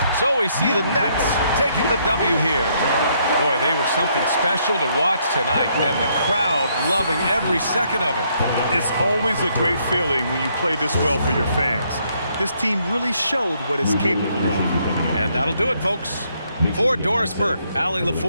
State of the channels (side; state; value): both; inverted; correlation -0.71